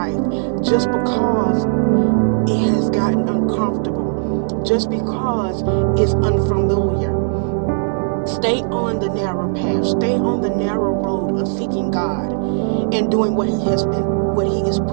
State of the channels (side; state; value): left; silent; digital silence